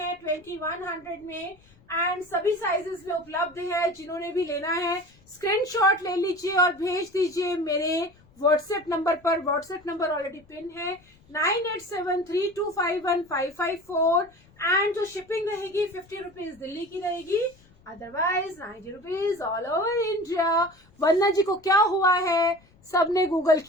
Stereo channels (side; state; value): left; noise; rumble, 29 dB below the sound